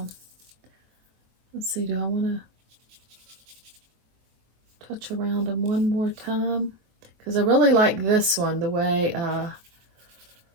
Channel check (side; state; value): left; late; 23 ms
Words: let's see, do I want to touch around them one more time? Because I really like this one, the way I